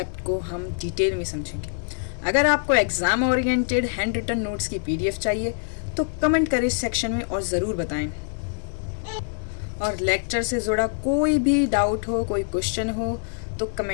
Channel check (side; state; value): right; silent; digital silence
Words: को हम डिटेल में समझेंगे। अगर आपको exam oriented handwritten notes की पीडीएफ चाहिए तो कमेंट करें सेक्शन में और ज़रूर बताएं। और लेक्चर से जुड़ा कोई भी डाउट हो, कोई क्वेश्चन हो तो